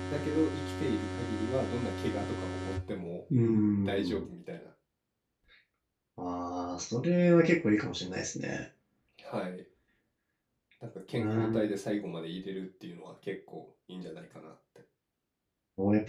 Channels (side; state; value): both; identical; correlation 1.00